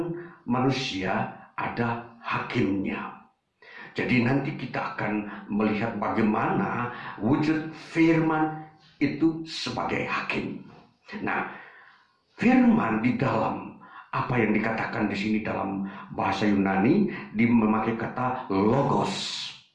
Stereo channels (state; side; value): identical; both; correlation 1.00